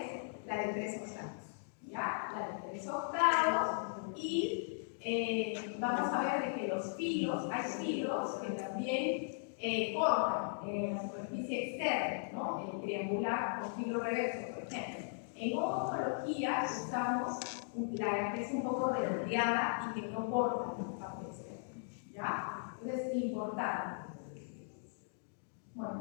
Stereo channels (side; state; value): right; silent; digital silence